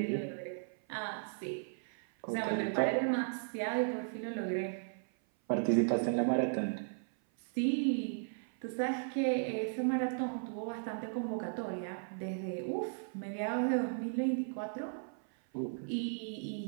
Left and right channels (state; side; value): silent; left; 54 dB below the other